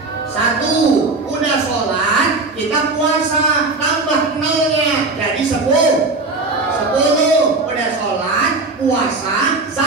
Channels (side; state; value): left; quieter; 3.5 dB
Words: 1. Udah sholat kita puasa, tambah 0-nya jadi 10. Udah sholat, puasa,